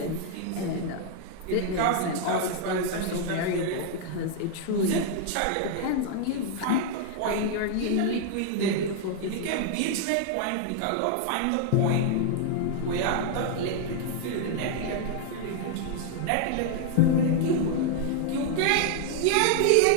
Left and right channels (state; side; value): different; both; correlation 0.00